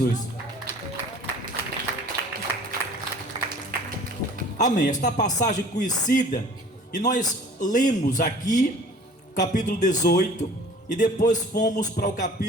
Amém. Esta passagem conhecida, e nós lemos aqui capítulo 18 e depois fomos para o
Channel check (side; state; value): both; normal; correlation 0.47